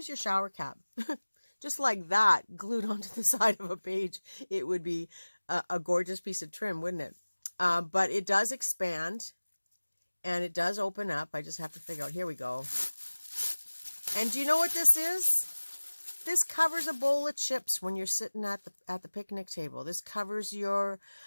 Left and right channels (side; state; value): both; inverted; correlation -1.00